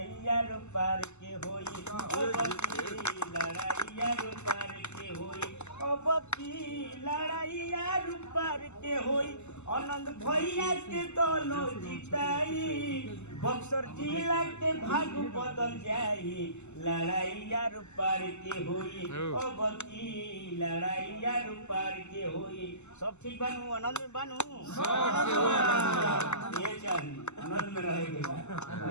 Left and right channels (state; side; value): late; right; 0.83 ms